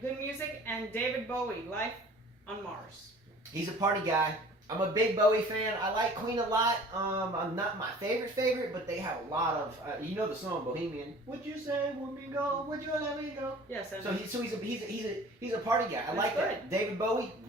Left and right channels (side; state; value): both; normal; correlation 0.47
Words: Good Music, and David Bowie, Life on Mars. He's a party guy. I'm a big Bowie fan. I like Queen a lot. I'm not my favorite, but they have a lot of, you know the song Bohemian. Would you say let me go? Would you let me go? Yes. So he's a party guy. I like good. that. David Bowie